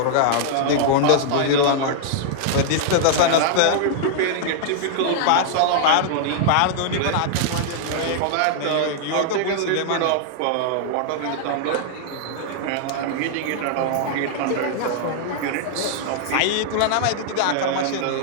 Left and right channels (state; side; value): different; both; correlation -0.01